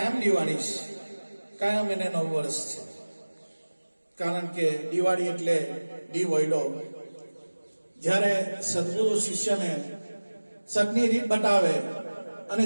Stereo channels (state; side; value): inverted; both; correlation -1.00